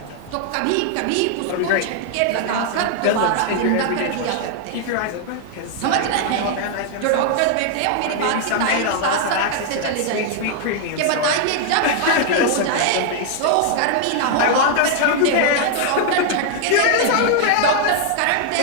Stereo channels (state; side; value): different; both; correlation 0.00